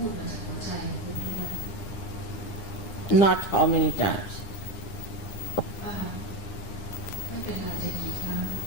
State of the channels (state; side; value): late; right; 9.9 ms